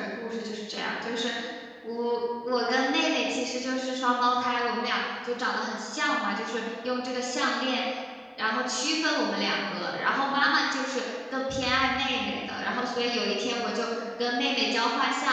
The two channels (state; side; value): identical; both; correlation 1.00